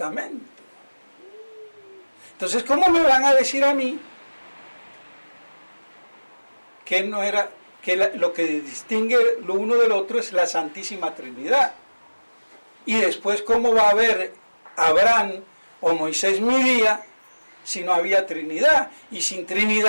Entonces, ¿cómo me van a decir a mí que no era, que lo que distingue lo uno del otro es la Santísima Trinidad? Y después, ¿cómo va a haber Abraham o Moisés mi día si no había Trinidad? Y sin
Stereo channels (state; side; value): inverted; both; correlation -1.00